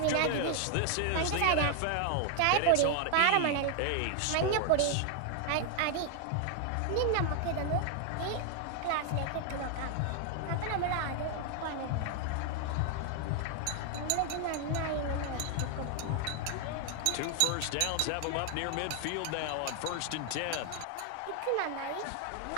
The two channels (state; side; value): different; both; correlation 0.00